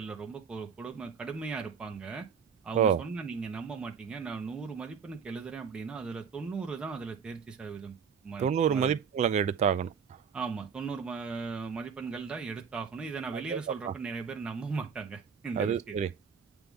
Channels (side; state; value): left; quieter; 6.5 dB